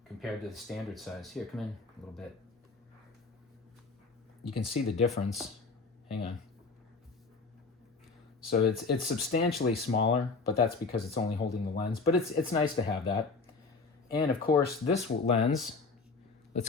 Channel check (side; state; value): right; quieter; 4.2 dB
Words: compared to the standard size. Here, come in a little bit. You can see the difference. Hang on. So it's substantially smaller, but that's because it's only holding the lens. But it's nice to have that. And of course, this lens,